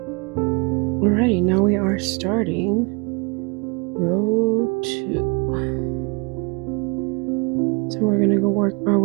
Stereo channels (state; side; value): quieter; left; 30.7 dB